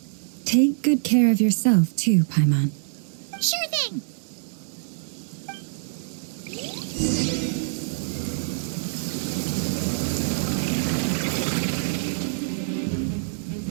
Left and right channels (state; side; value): silent; left; digital silence